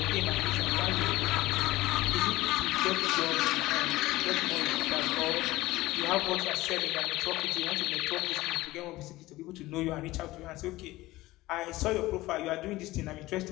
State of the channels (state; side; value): quieter; right; 18.3 dB